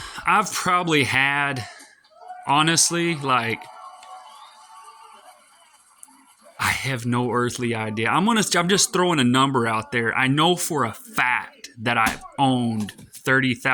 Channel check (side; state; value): both; identical; correlation 1.00